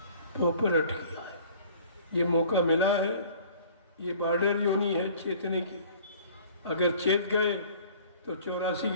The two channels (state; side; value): inverted; both; correlation -0.50